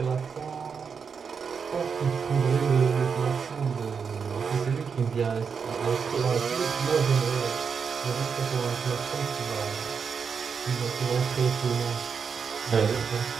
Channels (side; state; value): left; quieter; 6.1 dB